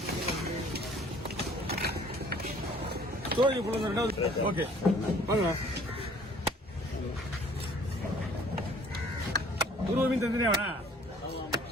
சோழி புள்ள ரெண்டாவது ஓகே வாங்க குருவ மீன் தந்துனே வேணா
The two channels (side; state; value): both; normal; correlation 0.54